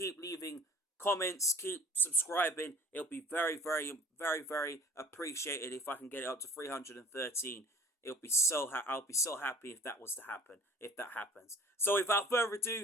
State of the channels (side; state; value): both; normal; correlation 0.48